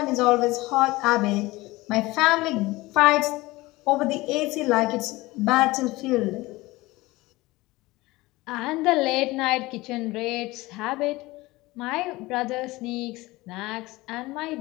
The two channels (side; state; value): right; quieter; 20.3 dB